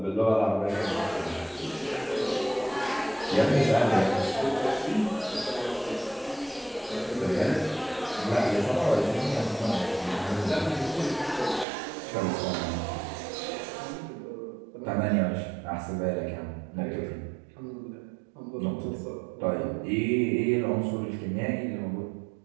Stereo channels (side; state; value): left; drops out; at 11.7 s